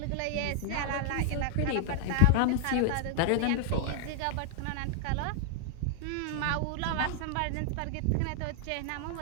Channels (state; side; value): different; both; correlation 0.00